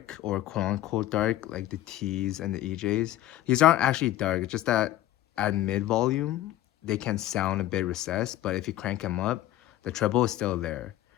or quote unquote dark like the T's and the EJs. These aren't actually dark. It's just that at mid volume they can sound a bit recessed, but if you crank them up, the treble is still there.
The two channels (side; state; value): right; quieter; 14.2 dB